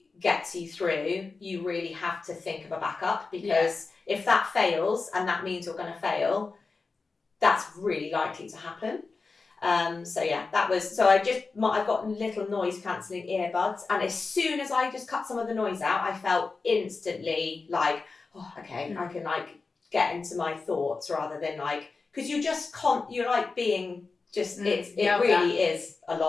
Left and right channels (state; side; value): quieter; right; 4.2 dB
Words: gets you through, you really have to think of a backup, because if that fails and that means you're going to fail, that's really likely to happen. I've got little noise cancelling earbuds, and as soon as I just cut some of the noise out, I felt instantly like, I can like get into my thoughts rather than like, because you just can't, you're like being just, it really is a